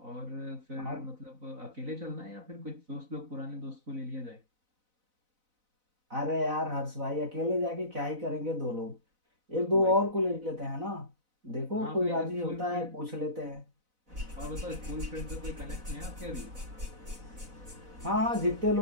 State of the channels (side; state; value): left; late; 4.0 ms